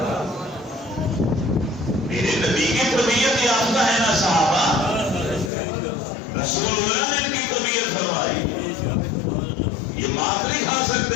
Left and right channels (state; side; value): drops out; right; at 5.5 s